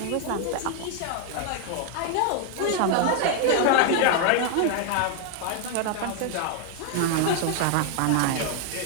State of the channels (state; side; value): different; both; correlation 0.00